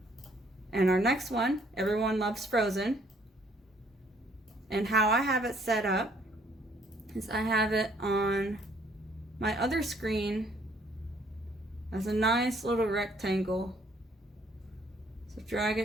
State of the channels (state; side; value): normal; both; correlation 0.64